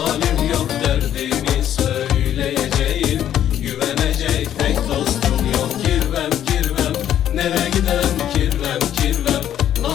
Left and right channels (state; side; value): quieter; right; 10.8 dB